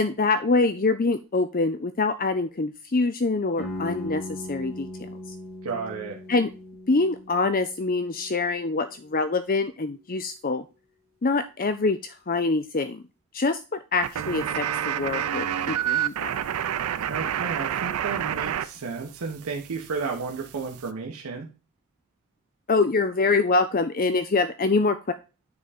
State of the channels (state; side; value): normal; both; correlation 0.12